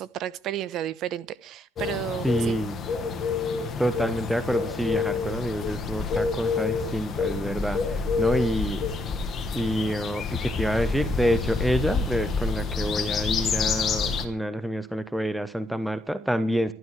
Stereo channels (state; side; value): normal; both; correlation 0.75